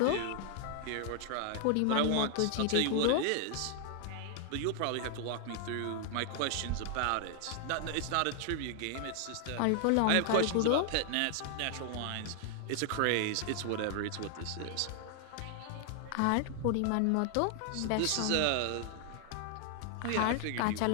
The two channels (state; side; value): different; both; correlation 0.00